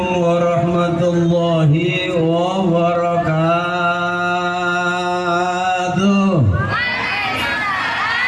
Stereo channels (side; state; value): both; identical; correlation 1.00